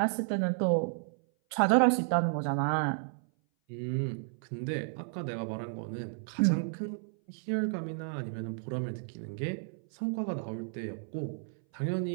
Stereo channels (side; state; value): left; silent; 56 dB below the other